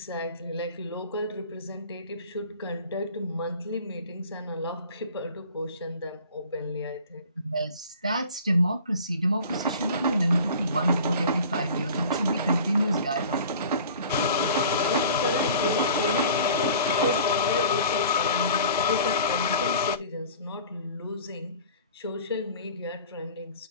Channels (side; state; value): both; inverted; correlation -0.44